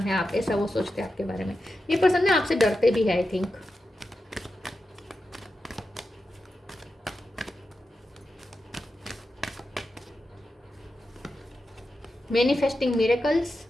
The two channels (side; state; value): both; normal; correlation 0.90